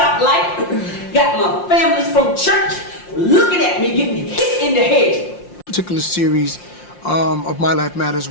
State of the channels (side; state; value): right; late; 5.7 ms